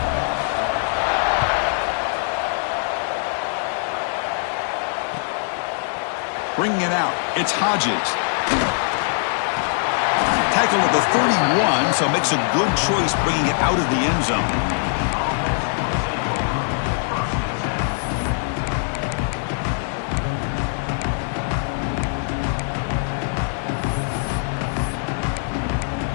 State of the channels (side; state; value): right; silent; digital silence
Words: Bringing it out, it's Hodges. Tackled at the 31, so makes a good choice bringing it out of the end zone.